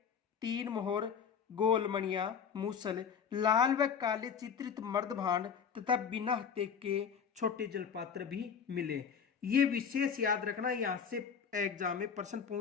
3 मोहर, गोलमणियां, मूसल, लाल व काले चित्रित मर्द भांड तथा बिना हत्थे के छोटे जलपात्र भी मिले। ये विशेष याद रखना, यहां से एग्जाम में प्रश्न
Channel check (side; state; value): right; quieter; 6.9 dB